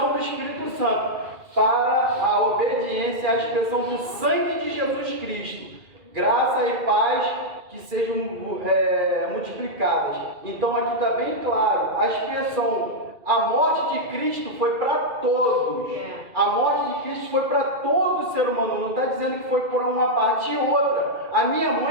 do Espírito Santo, para a obediência à expressão do sangue de Jesus Cristo. Graça e paz que sejam multiplicadas. Então, aqui está bem claro, a expressão, a morte de Cristo foi para todos. A morte de Cristo foi para todo ser humano. Não está dizendo que foi por uma parte e outra. A minha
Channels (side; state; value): left; late; 2.4 ms